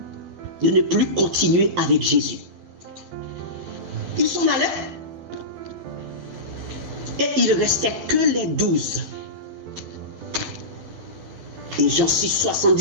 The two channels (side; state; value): left; late; 12 ms